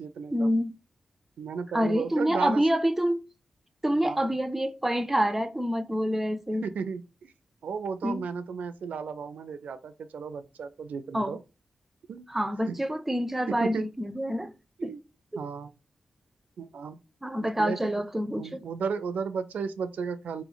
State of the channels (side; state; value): both; normal; correlation 0.94